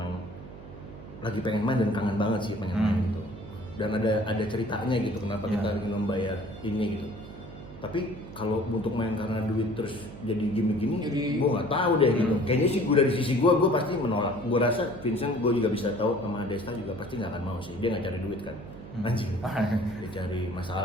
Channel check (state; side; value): noise; right; hum, 14 dB below the sound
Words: lagi pengen main dan kangen banget sih pengen main gitu. Dan ada ceritanya gitu, kenapa kita ingin membayar ini gitu. Tapi kalau untuk main karena duit terus jadi gimmick gini, gue nggak tahu deh gitu. Kayaknya sih gue dari sisi gue pasti menolak. Gue rasa Vincent gue juga bisa tahu sama Desta juga pasti nggak akan mau sih. Dia nggak cari duit kan, anjing. Dia cari